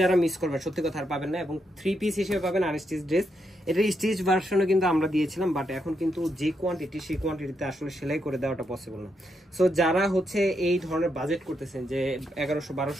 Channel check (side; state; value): both; normal; correlation 0.81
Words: মিস করবে সত্যি কথা আর পাবেন না, এবং 3 পিস হিসেবে পাবেন আনস্টিচ ড্রেস। এটা স্টিচ ভার্সনও কিন্তু আমরা দিয়েছিলাম, বাট এখন কিন্তু যে কোয়ান্টিটি সেই কোয়ান্টিটিতে আসলে সেলাই করে দেওয়াটা পসিবল না। সো যারা হচ্ছে এই ধরনের বাজেট করতেছেন যে